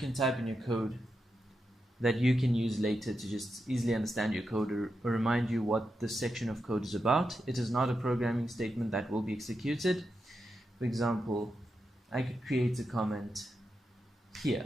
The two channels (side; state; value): both; normal; correlation 0.87